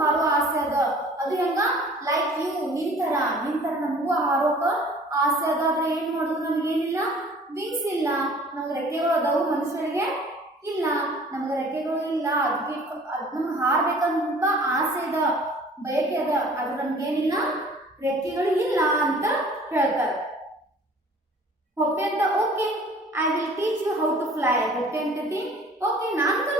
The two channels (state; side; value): normal; both; correlation 0.50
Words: ಆಸೆ ಅದ. ಅದು ಹೆಂಗ ಲೈಕ್ ಯು ನಿನ್ ತರ ನಮಗೂ ಹಾರೋಕ ಆಸೆ ಅದ. ಆದ್ರೆ ಏನ್ ಮಾಡೋದು ನಮಗೇನಿಲ್ಲ ವಿಂಗ್ಸ್ ಇಲ್ಲ. ನಮ್ಗೆ ರೆಕ್ಕೆಗಳು ಅದಾವು ಮನುಷ್ಯರಿಗೆ ಇಲ್ಲ, ನಮ್ಗೆ ರೆಕ್ಕೆಗಳು ಇಲ್ಲ. ಅದಕ್ಕೆ ನಮ್ಗೆ ಹಾರ್ಬೇಕಂತ ಆಸೆ ಅದ ಬಯಕೆ ಅದ ಅದು ನಮ್ಗೇನಿಲ್ಲ ರೆಕ್ಕೆಗಳು ಇಲ್ಲ ಅಂತ ಹೇಳ್ತಾರೆ. ಹೊಪ್ಪೆ ಅಂತ okay I will teach you how to fly. Hoppy ಅಂತತಿ ಓಕೆ ನಾನು